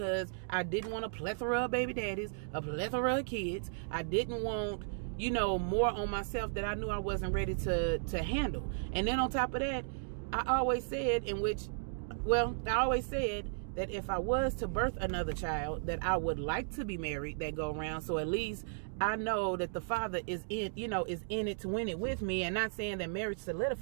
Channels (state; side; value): silent; left; digital silence